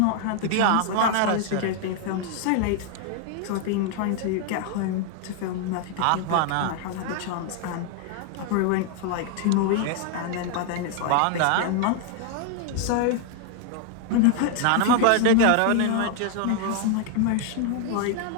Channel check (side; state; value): both; different; correlation 0.00